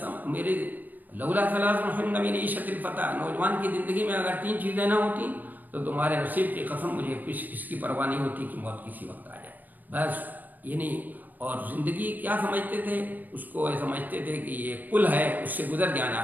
میرے لولا ثلاث ہن من عیشت الفدا، نوجوان کی زندگی میں اگر تین چیزیں نہ ہوتی تو تمہارے نصیب کی قسم مجھے اس کی پرواہ نہیں ہوتی کہ موت کسی وقت آ جائے. بس یہ نہیں. اور زندگی کیا سمجھتے تھے؟ اس کو سمجھتے تھے کہ یہ پل ہے، اس سے گزر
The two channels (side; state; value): left; late; 0.086 ms